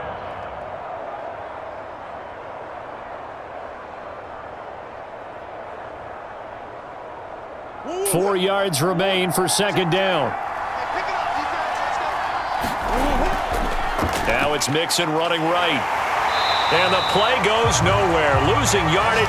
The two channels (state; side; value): identical; both; correlation 1.00